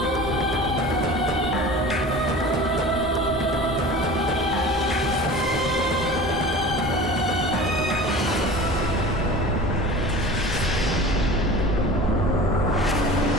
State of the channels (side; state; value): both; normal; correlation 0.37